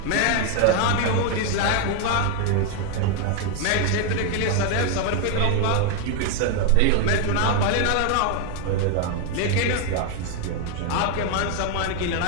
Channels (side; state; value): both; different; correlation 0.01